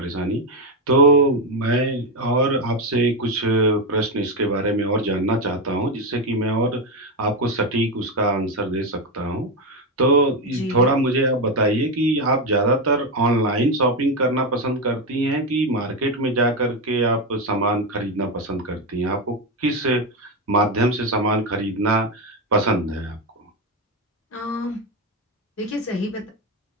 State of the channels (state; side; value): normal; both; correlation 0.10